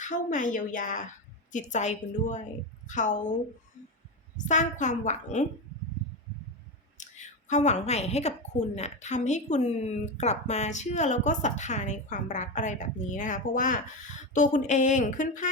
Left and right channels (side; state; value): both; normal; correlation 0.16